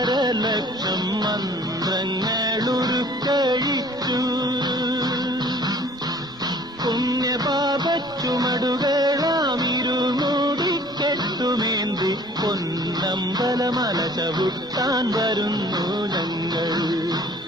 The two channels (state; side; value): normal; both; correlation 0.52